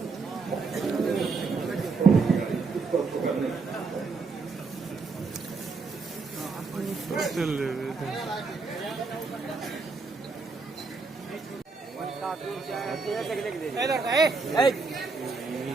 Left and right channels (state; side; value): quieter; left; 4.4 dB